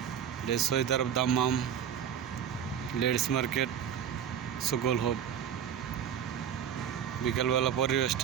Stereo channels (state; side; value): quieter; left; 8.9 dB